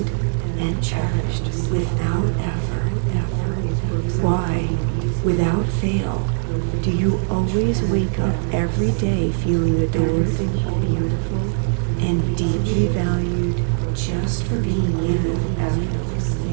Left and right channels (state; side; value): silent; left; digital silence